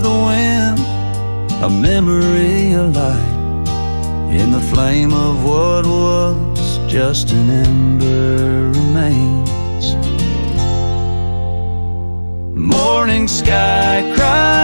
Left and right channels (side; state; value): both; inverted; correlation -1.00